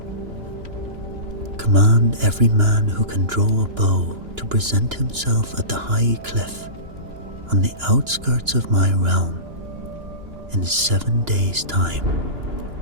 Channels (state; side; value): late; left; 2.9 ms